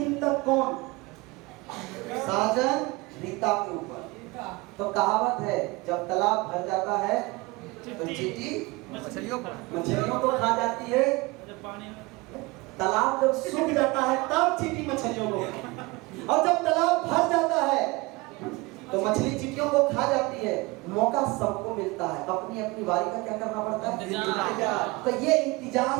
तक कौन? साजन रीता के ऊपर। तो कहावत है, जब तालाब भर जाता है तो चींटी मछलियों को को खा जाती है। तालाब जब सूख जाता है तब चींटी मछलियों को, और जब तालाब भर जाता है तो मछली चींटियों को खा जाती है। मौका सबको मिलता है, अपनी अपनी बारी का क्या करना पड़ता है? इंतजार। तो ये इंतजार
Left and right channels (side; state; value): left; quieter; 23.6 dB